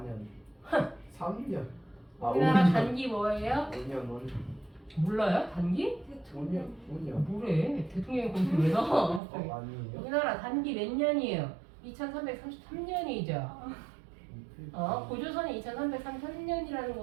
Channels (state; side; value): drops out; left; at 9.2 s